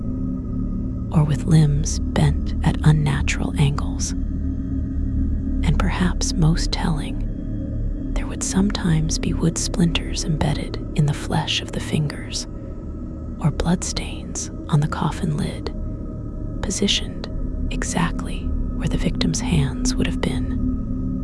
or with limbs bent at unnatural angles. And perhaps most telling, there would sometimes be wood splinters embedded in the flesh of the fingers, or bloodstains on the coffin lid, positioned exactly where the victim's hands would have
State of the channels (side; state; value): both; identical; correlation 1.00